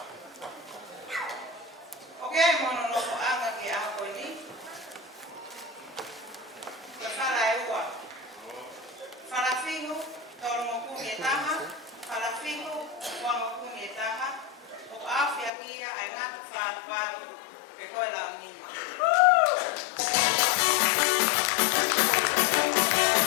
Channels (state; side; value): drops out; right; at 15.5 s